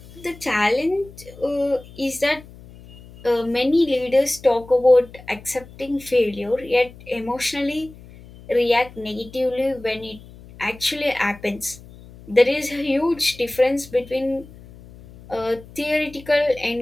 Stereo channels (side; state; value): left; noise; hum, 20 dB below the sound